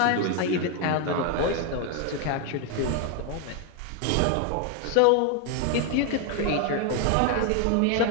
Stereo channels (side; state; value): both; different; correlation 0.01